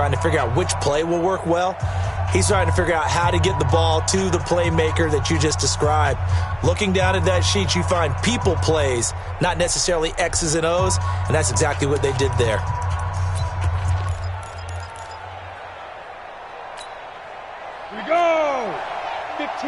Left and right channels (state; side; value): identical; both; correlation 1.00